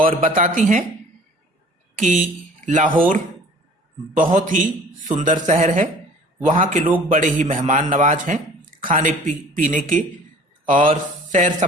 बताती हैं कि लाहौर बहुत ही सुंदर शहर है, वहाँ के लोग बड़े ही मेहमान नवाज हैं, खाने पीने के और सैर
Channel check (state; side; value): normal; both; correlation 0.48